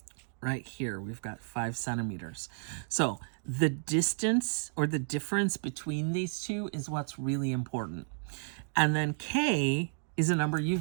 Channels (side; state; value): left; silent; digital silence